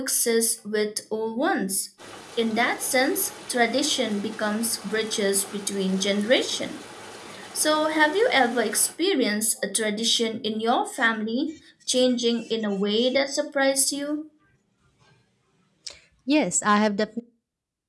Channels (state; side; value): identical; both; correlation 1.00